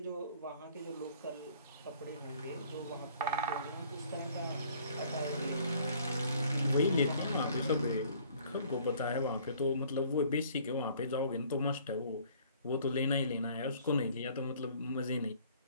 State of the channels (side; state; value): both; inverted; correlation -0.56